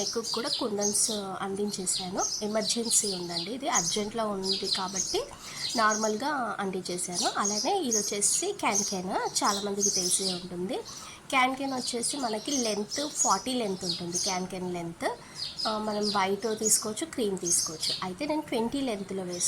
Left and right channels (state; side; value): identical; both; correlation 1.00